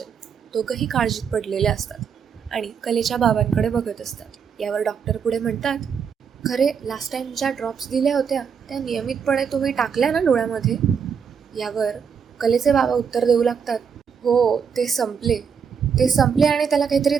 दोघंही काळजीत पडलेले असतात आणि कलेच्या बाबांकडे बघत असतात. यावर डॉक्टर पुढे म्हणतात खरे, लास्ट टाइम ज्या ड्रॉप्स दिल्या होत्या त्या नियमितपणे तुम्ही टाकल्या ना डोळ्यामध्ये? यावर कलेचे बाबा उत्तर देऊ लागतात हो, ते संपले आणि त्याला काहीतरी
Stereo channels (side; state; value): left; quieter; 6.8 dB